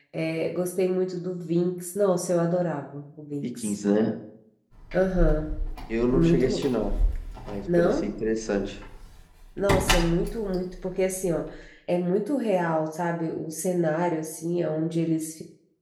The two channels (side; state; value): both; identical; correlation 1.00